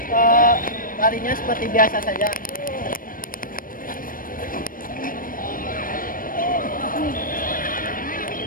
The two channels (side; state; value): right; late; 0.40 ms